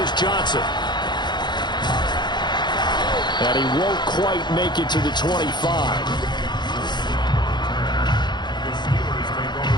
Johnson. And he won't quite make it to the 25.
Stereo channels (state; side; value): late; right; 0.21 ms